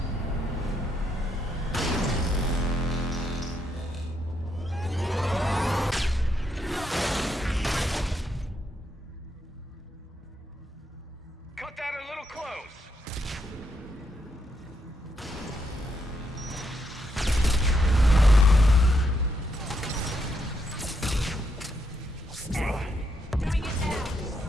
Cut that a little close.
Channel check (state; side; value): normal; both; correlation 0.78